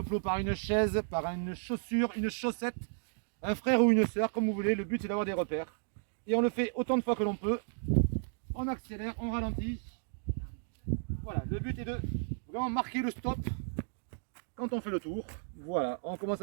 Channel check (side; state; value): left; silent; digital silence